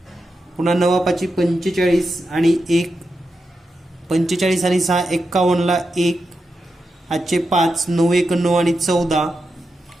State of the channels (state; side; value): normal; both; correlation 0.88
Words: पुन्हा 9 5 45 आणि 1, 45 आणि 6 51 ला 1 हातचे 5, 9 1 9 आणि 14